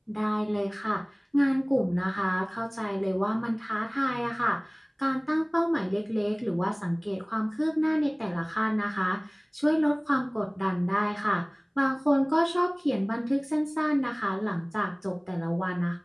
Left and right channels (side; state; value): both; identical; correlation 1.00